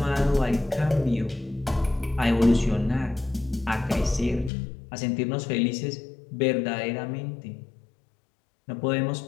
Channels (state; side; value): drops out; right; at 4.5 s